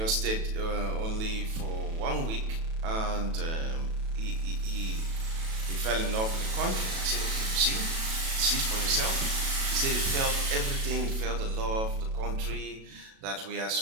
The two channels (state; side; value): late; left; 37 ms